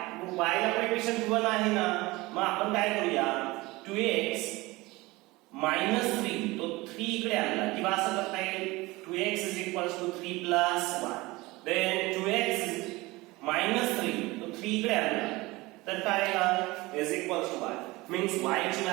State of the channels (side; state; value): left; quieter; 21.5 dB